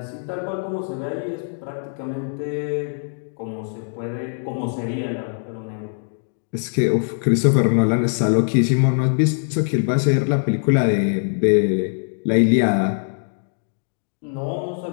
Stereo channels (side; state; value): right; silent; digital silence